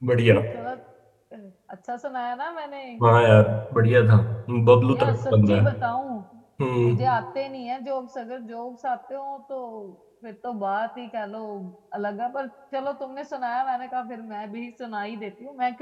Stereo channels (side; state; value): both; identical; correlation 1.00